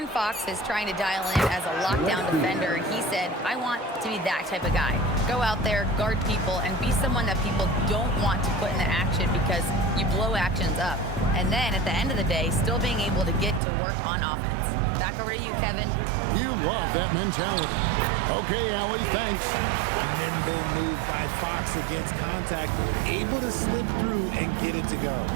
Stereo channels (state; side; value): drops out; left; at 13.6 s